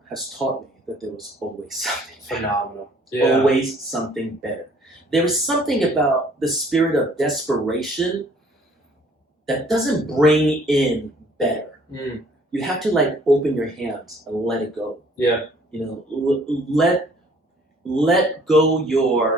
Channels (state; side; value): normal; both; correlation 0.58